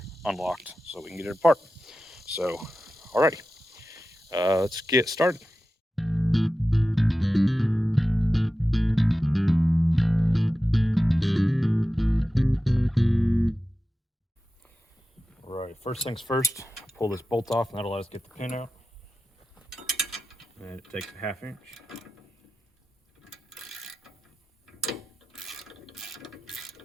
unlocked, so we can get it apart. So, alrighty, let's get started. Alright, first things first, pull this bolt off, and that'll let us get the pin out. And it takes a 1/2 inch.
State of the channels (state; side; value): normal; both; correlation 0.94